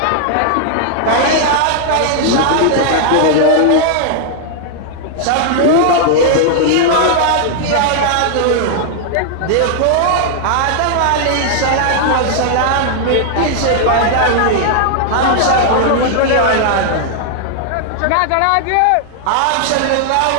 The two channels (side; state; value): both; different; correlation 0.00